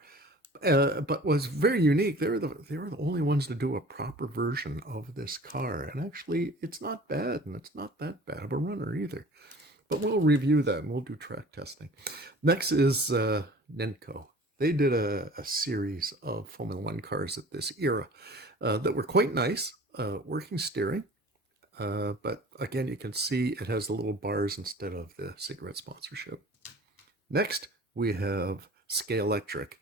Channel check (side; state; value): both; normal; correlation 0.45